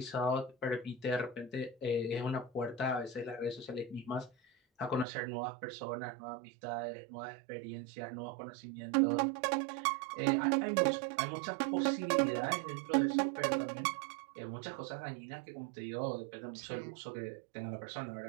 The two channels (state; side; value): drops out; left; at 5.1 s